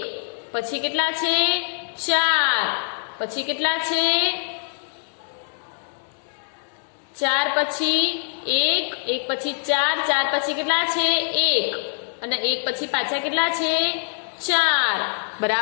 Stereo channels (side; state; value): right; silent; digital silence